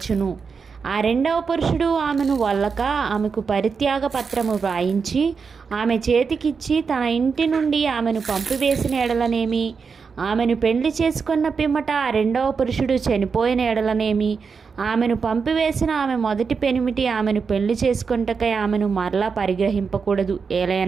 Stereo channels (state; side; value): quieter; left; 5.5 dB